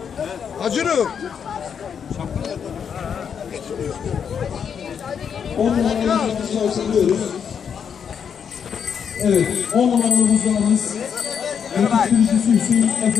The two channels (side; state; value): right; quieter; 7.3 dB